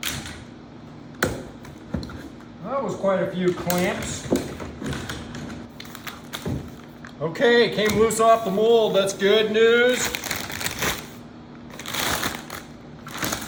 That was quite a few clamps. Okay, came loose off the mold. That's good news.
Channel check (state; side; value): identical; both; correlation 1.00